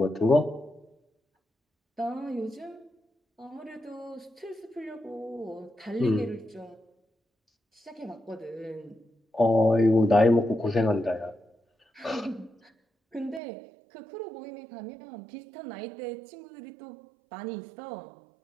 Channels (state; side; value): drops out; left; at 13.4 s